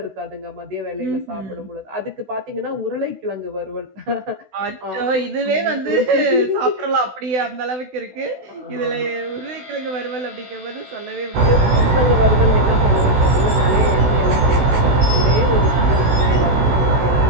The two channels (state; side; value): late; left; 16 ms